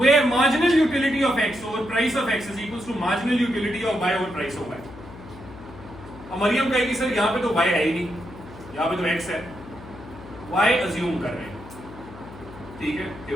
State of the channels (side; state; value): left; noise; hum, 16 dB below the sound